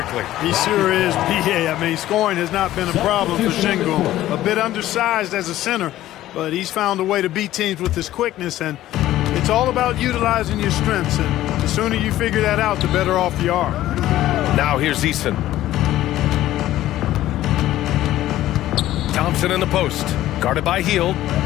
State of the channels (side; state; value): right; quieter; 14.3 dB